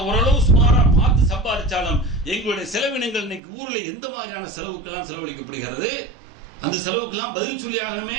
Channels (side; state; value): left; drops out; at 3.4 s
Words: ஓரளவு சுமாரா பார்த்து சம்பாதிச்சாலும் எங்களுடைய செலவினங்கள் இன்னைக்கு ஊர்ல எந்த மாதிரியான செலவுக்கெல்லாம் செலவழிக்கப்படுகிறது, அந்த செலவுக்கெல்லாம் பதில் சொல்லி ஆகணுமே.